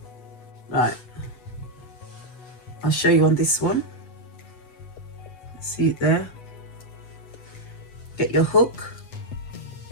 Right. I'll show you on this one. See it there? Get your hook.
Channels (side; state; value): right; late; 8.1 ms